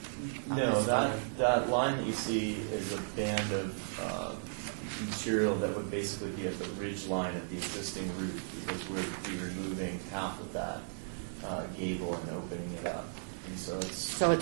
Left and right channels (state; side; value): silent; left; digital silence